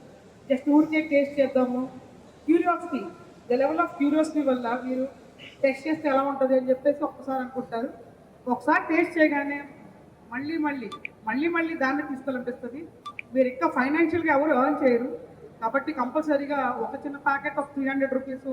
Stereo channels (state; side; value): identical; both; correlation 1.00